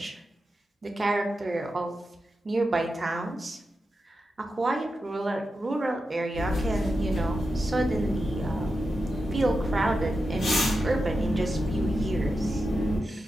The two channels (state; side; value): normal; both; correlation 0.90